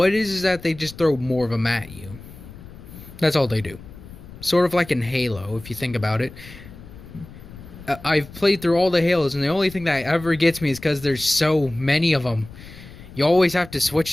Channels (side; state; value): left; noise; rumble, 17 dB below the sound